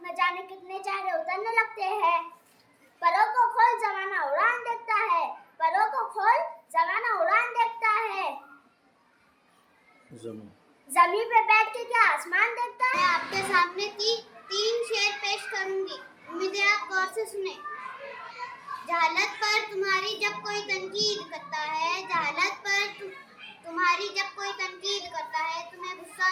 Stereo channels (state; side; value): identical; both; correlation 1.00